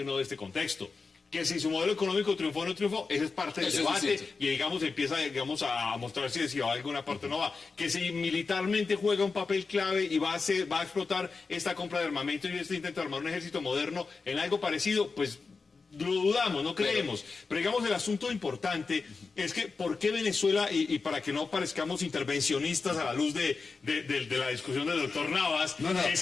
o no de este contexto. Que si su modelo económico triunfó o no triunfó, ese es parte del Eso es debate distinto. y empieza a mostrar si va a alguna parte o no va. Que si militarmente juega un papel clave y va a explotar esta compra de armamento y este intento de armar un ejército moderno en algo parecido, pues lo dudamos, no creemos. Pero digamos, el asunto importante es que ¿por qué Venezuela, y para que no parezcamos intervencionistas a la luz de la discusión del doctor Navas, es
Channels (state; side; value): quieter; right; 4.5 dB